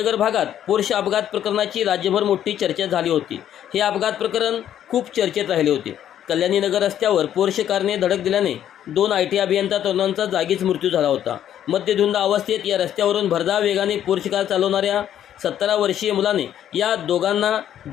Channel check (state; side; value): quieter; right; 10.6 dB